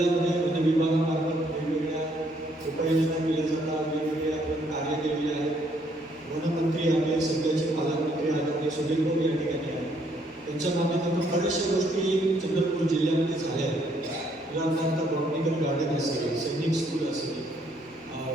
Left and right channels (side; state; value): both; normal; correlation 0.68